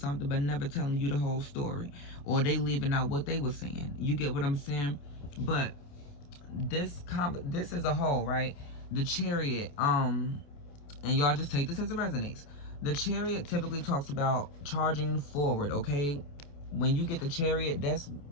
but never telling you the whole story, or they leaving out what they were saying. You get what I'm saying? But this is a whole, right? The Chariot, and y'all just take this as it resonates. The Chariot typically talks about charging forward, okay? When you get the Chariot, that's,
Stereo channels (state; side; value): late; right; 28 ms